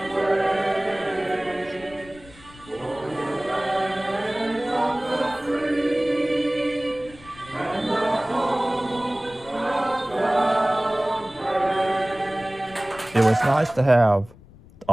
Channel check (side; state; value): left; noise; rumble, 22 dB below the sound